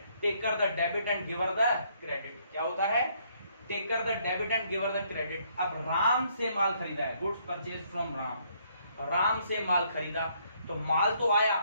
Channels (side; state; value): both; inverted; correlation -0.68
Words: Taker the debit and giver the credit. क्या होता है? Taker the debit and giver the credit. अब राम से माल खरीदा है, goods purchase from Ram, Ram से माल खरीदा तो माल तो आया